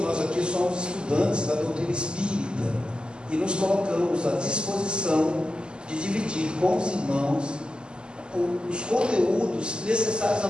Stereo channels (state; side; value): late; left; 0.048 ms